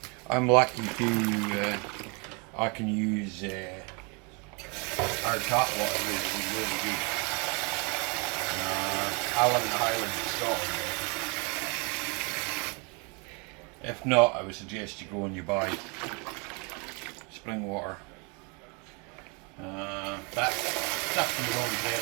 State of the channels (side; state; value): left; quieter; 32.4 dB